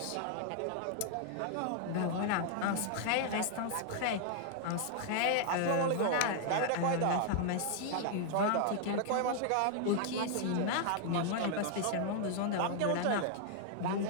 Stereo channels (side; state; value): both; different; correlation 0.00